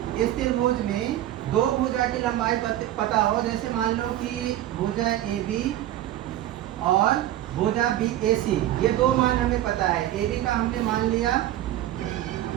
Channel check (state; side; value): quieter; left; 13.4 dB